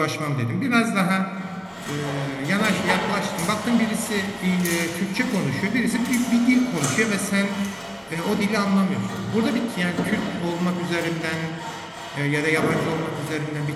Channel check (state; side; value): identical; both; correlation 1.00